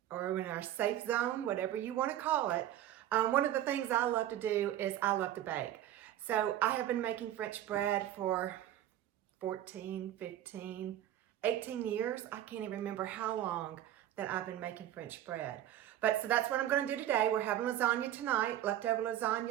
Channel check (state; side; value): quieter; left; 12.2 dB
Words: or in our safe zone, whatever you want to call it? One of the things I love to do is I love to bake. So I have been making French bread for 14, 15, 18 years. I can't even remember how long that I've been making French bread. So that's what I'm going to do today. We're having lasagna tonight, leftover